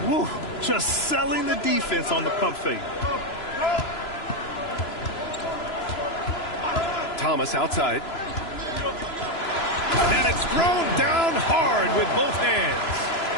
Woo, just selling the defense on the pump fake. Thomas outside. And it's thrown down hard with both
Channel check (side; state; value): right; late; 3.0 ms